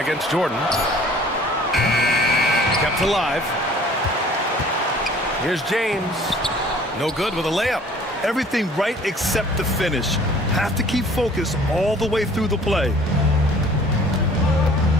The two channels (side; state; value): both; normal; correlation 0.52